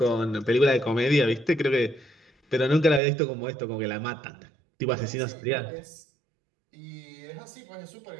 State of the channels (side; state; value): left; drops out; at 3.0 s